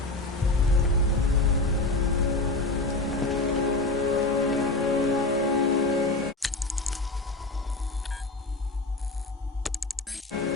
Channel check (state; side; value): quieter; right; 3.1 dB